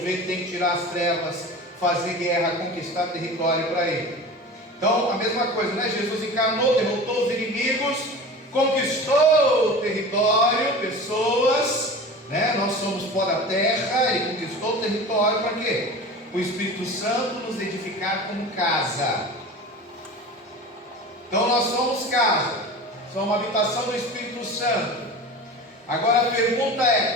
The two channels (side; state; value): both; normal; correlation 0.34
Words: tem que tirar as trevas, fazer guerra, conquistar território para ele. Então a mesma coisa, Jesus encarnou, derrotou os inimigos, conquistou o território, pessoas, nós somos pó da terra, ele conquistou o território para quê? O Espírito Santo nos edificar como casa. Então nós somos casa, somos uma habitação do Espírito Santo. Agora a pergunta